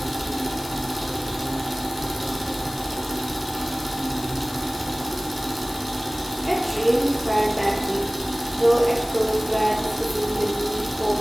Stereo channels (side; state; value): left; noise; hiss, 14 dB below the sound